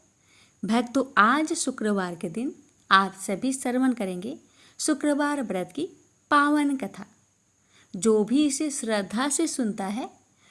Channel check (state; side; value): identical; both; correlation 1.00